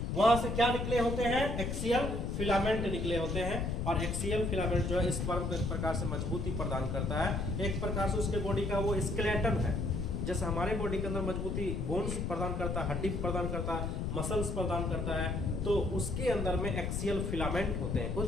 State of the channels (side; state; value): left; noise; rumble, 1 dB below the sound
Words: से क्या निकले होते हैं? एक्सियल फिलामेंट निकले होते हैं। और एक्सियल फिलामेंट जो है स्पर्म को एक प्रकार से मजबूती प्रदान करता है, एक प्रकार से उसके बॉडी का वो स्केलेटन है। जैसे हमारे बॉडी के अंदर मजबूती बोन्स प्रदान करता है, हड्डी प्रदान करता है, मसल्स प्रदान करता है, तो उसके अंदर में एक्सियल फिलामेंट होते हैं